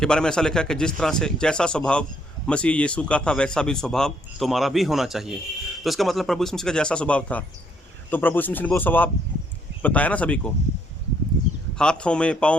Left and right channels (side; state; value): both; normal; correlation 0.69